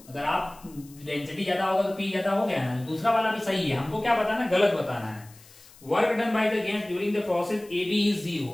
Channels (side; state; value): left; noise; hiss, 24 dB below the sound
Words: अगर आप डेंसिटी ज्यादा होगा तो पी ज्यादा हो गया ना। दूसरा वाला भी सही है, हमको क्या बताना, गलत बताना है। Work done by the gas during the process A B is